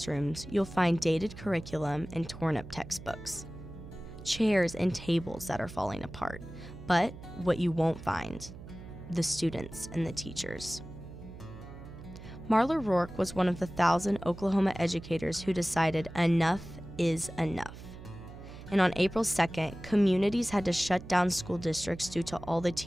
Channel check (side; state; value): right; noise; hum, 14 dB below the sound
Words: you'll find dated curriculum and torn-up textbooks, chairs and tables that are falling apart. But what you won't find, the students and the teachers. Marla Rourke was one of the 1,000 Oklahoma educators who decided enough is enough. And on April 2nd, communities had to shut down school districts due to all the